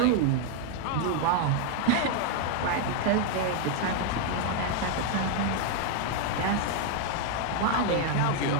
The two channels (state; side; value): different; both; correlation 0.00